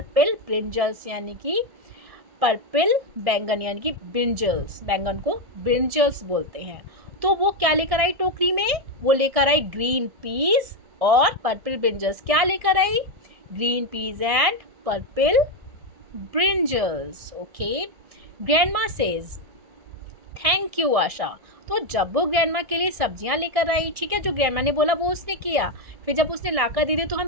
ब्रिंजल्स यानी कि पर्पल बैंगन यानी कि ब्रिंजल्स, बैंगन को ब्रिंजल्स बोलते हैं। तो वो क्या लेकर आई टोकरी में? वो लेकर आई ग्रीन पीस और पर्पल ब्रिंजल्स। क्या लेकर आई? Green peas and purple brinjals. Okay. Grandma says thank you Asha. तो जब वो ग्रैंडमा के लिए सब्जियां लेकर आई, ठीक है, जो ग्रैंडमा ने बोला वो उसने किया। फिर जब उसने लाकर दे दी तो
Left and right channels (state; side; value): late; left; 1.6 ms